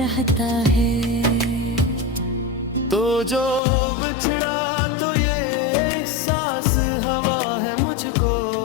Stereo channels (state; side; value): drops out; right; at 3.6 s